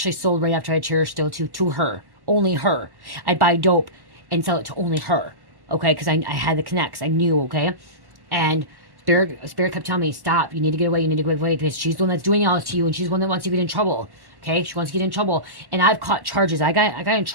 sold right after I cherished still to her, only her. I'd buy dope and sell it to only her. Okay, because I had the connects, I knew. Okay, and Spirit kept telling me, stop, you need to get away, you need to get away, because she's the one that's doing all this to you, and she's the one that wants you to get in trouble. Okay, she wants to get in trouble, and I've caught charges. I got in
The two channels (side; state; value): left; late; 1.1 ms